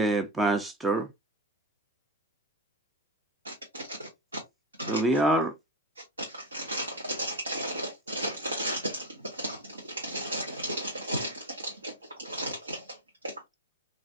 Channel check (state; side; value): normal; both; correlation 0.17